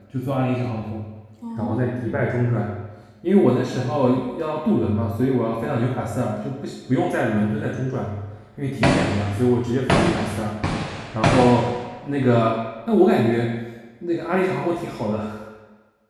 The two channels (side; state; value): both; identical; correlation 1.00